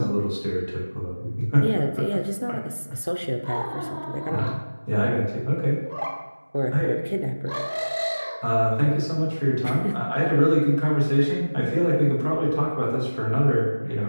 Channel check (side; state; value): both; inverted; correlation -1.00